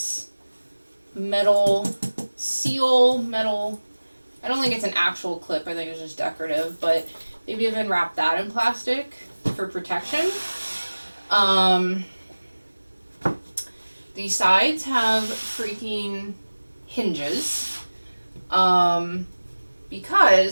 metal seal, I don't think it's an actual clip, I think it's just decorative, but maybe even wrap that in plastic for protection. The sides have freaking hinges.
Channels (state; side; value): inverted; both; correlation -1.00